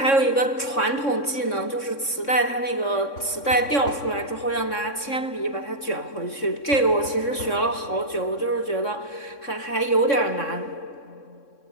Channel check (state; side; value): late; right; 3.6 ms